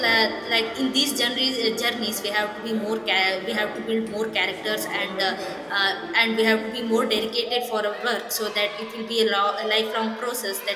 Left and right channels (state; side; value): identical; both; correlation 1.00